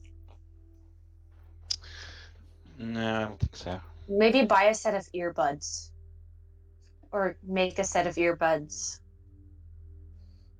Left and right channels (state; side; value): identical; both; correlation 1.00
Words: No, I don't think so. Maybe buy a set of earbuds. Or make a set of earbuds.